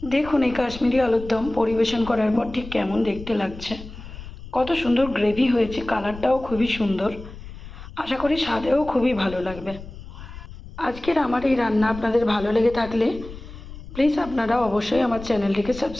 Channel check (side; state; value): left; noise; rumble, 14 dB below the sound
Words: দেখুন এই কাশ্মীরি আলুর দম পরিবেশন করার পর ঠিক কেমন দেখতে লাগছে। কত সুন্দর গ্রেভি হয়েছে, কালারটাও খুবই সুন্দর। আশা করি স্বাদেও খুবই ভালো লাগবে। আজকের আমার এই রান্না আপনাদের ভালো লেগে থাকলে প্লিজ আপনারা অবশ্যই আমার চ্যানেলটিকে